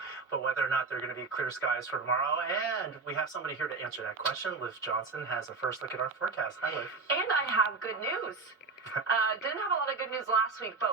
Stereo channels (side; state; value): left; quieter; 4.2 dB